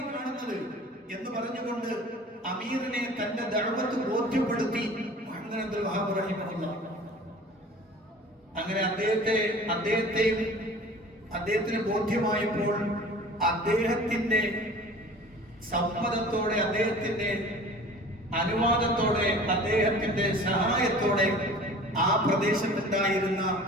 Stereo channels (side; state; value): both; normal; correlation 0.44